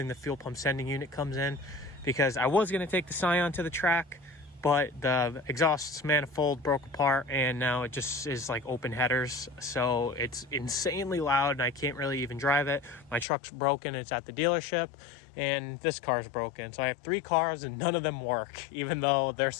the fuel pump sending unit comes in, because I was going to take the Scion to the track, but the exhaust manifold broke apart and now it just is like open headers, so it's insanely loud and I can't really even drive it. My truck's broken, it's at the dealership, and this car's broken. So I have 3 cars and none of them work, even though they're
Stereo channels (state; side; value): drops out; right; at 13.2 s